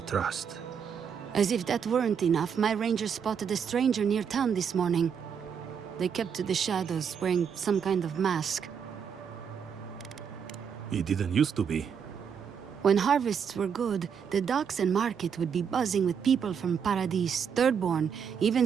trust. As if that weren't enough, my rangers spotted a stranger near town this morning. They kept to the shadows, wearing some kind of mask. It didn't used to be. When harvests were good, the docks and market would be buzzing with people from Paradis, Thirdborn,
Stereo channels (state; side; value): quieter; left; 7.2 dB